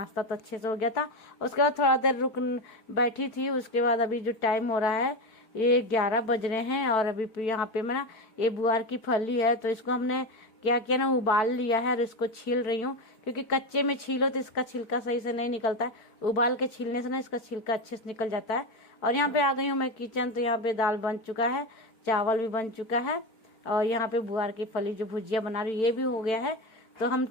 तो अच्छे से हो गया था। उसके बाद थोड़ा देर रुक बैठी थी। उसके बाद अभी जो टाइम हो रहा है ये 11 बज रहे हैं, और अभी यहाँ पे मैं ना ये बुआर की फली है, तो इसको हमने क्या किया ना, उबाल लिया है और इसको छील रही हूँ। क्योंकि कच्चे में छीलो तो इसका छिलका सही से नहीं निकलता है, उबाल के छीलने से ना इसका छिलका अच्छे से निकल जाता है। और यहाँ पे आ गई हूँ मैं किचन, तो यहाँ पे दाल बन चुका है, चावल भी बन चुका है, और यहाँ पे बुआर की फली जो भुजिया बना रही हूँ ये भी हो गया है। तो हम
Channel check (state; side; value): late; right; 4.6 ms